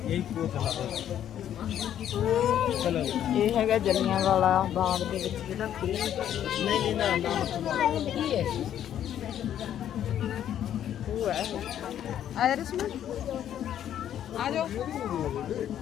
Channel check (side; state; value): right; quieter; 10.5 dB